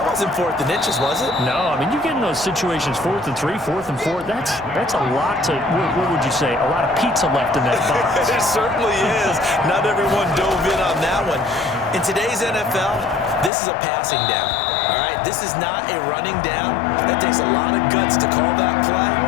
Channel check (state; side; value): drops out; right; at 13.5 s